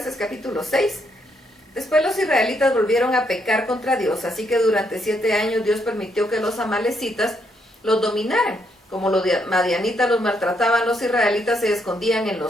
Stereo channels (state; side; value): normal; both; correlation 0.75